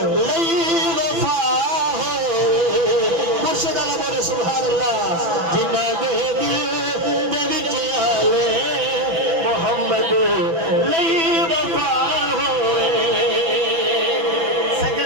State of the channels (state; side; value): late; left; 6.0 ms